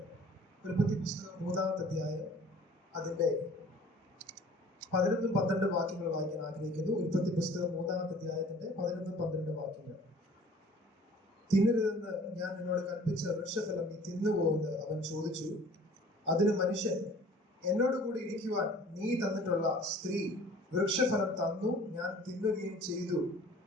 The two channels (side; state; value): both; normal; correlation 0.50